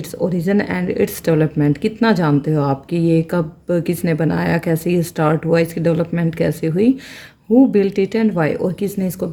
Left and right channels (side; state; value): both; identical; correlation 1.00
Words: origin and its development, कितना जानते हो आप कि ये कब किसने बनाया, कैसे ये स्टार्ट हुआ, इसकी डेवलपमेंट कैसे हुई। Who built it and why, और किसने इसको